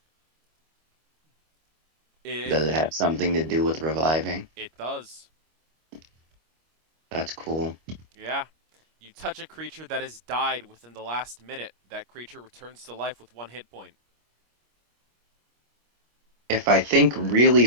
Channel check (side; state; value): left; late; 25 ms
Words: It Does it have something to do with reviving? it does. That's cool. Yeah. You touch a creature that has died within the last minute. That creature returns to life with 1 hit point. If I think really